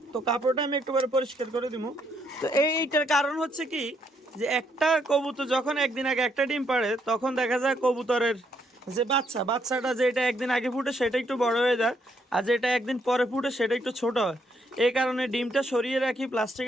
তো কাপড়টা আমি একটু পরিষ্কার করে দিব। তো এইটার কারণ হচ্ছে কি, যে একটা কবুতর যখন একদিন আগে একটা ডিম পাড়ে, তখন দেখা যায় কবুতরের যে বাচ্চাটা যেটা একদিন আগে ফুটে সেটা একটু বড় হয়ে যায়, আর যেটা একদিন পরে ফুটে সেটা একটু ছোট হয়। এই কারণে ডিমটা সরিয়ে রাখি,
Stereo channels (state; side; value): normal; both; correlation 0.73